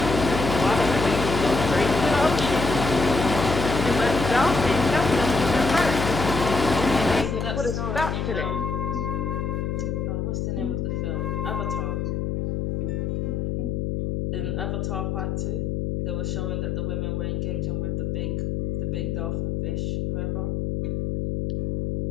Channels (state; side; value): noise; left; hum, 1 dB below the sound